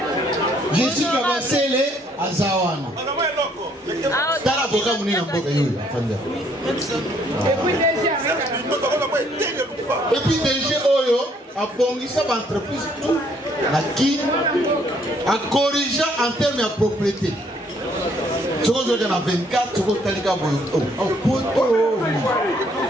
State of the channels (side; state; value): both; normal; correlation 0.66